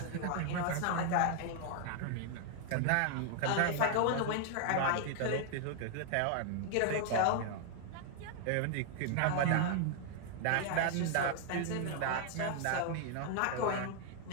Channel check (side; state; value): both; different; correlation 0.00